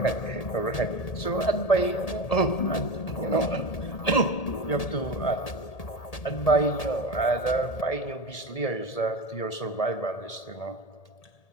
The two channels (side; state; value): right; late; 1.8 ms